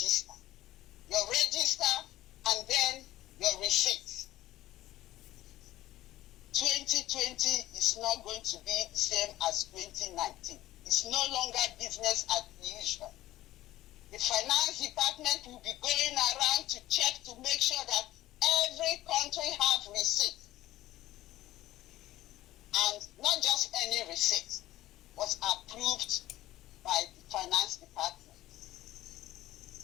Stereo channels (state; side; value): quieter; right; 15.3 dB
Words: Your register and then your receipt. 2020 is not going to be the same as 2019. It's no longer business as usual. The finance department will be going around to check to make sure that every country have receipt. And not just any receipt, was approved by the finance department.